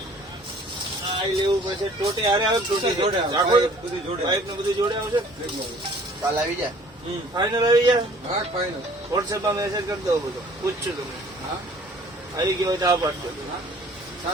આ લેવું પછી ટોટી હારે આવે ટોટી જોડે આવે. આખો બધું જોડે પાઇપ ને બધું જોડે આવશે કાલ આવી જાય હમ ફાઇનલ આવી જાય હા ફાઇનલ વોટ્સએપમાં મેસેજ કરી દો બધો પૂછશું તમે હા આવી ગયો હોય તો આ પાડજો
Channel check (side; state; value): both; normal; correlation 0.53